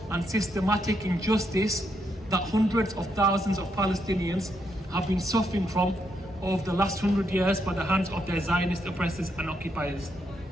and systematic injustice that hundreds of thousands of Palestinians have been suffering from over the last 100 years by the hands of their Zionist oppressors and occupiers.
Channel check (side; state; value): both; normal; correlation 0.78